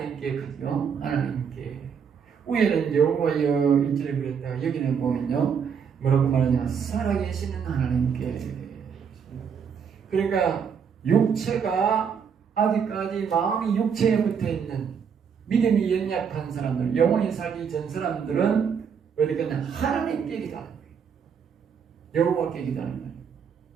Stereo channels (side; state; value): left; quieter; 6.9 dB